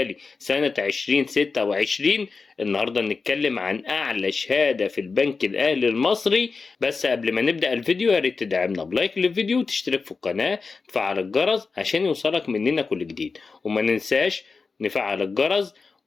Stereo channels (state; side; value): quieter; right; 4.5 dB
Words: سنة 2026. النهاردة نتكلم عن أعلى شهادة في البنك الأهلي المصري. بس قبل ما نبدأ الفيديو يا ريت تدعمنا بلايك للفيديو وتشترك في القناة وتفعل الجرس عشان يوصلك مننا كل جديد، وما ننساش نفعل الجرس